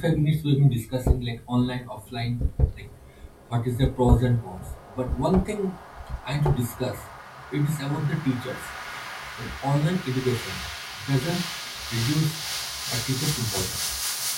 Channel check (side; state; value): both; identical; correlation 1.00